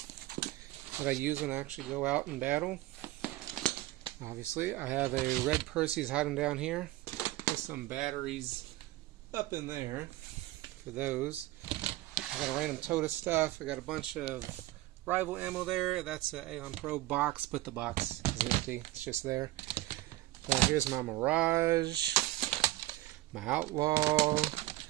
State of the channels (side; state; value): left; quieter; 17.5 dB